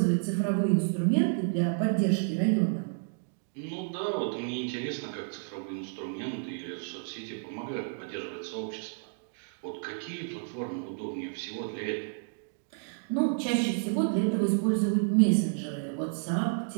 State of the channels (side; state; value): left; silent; digital silence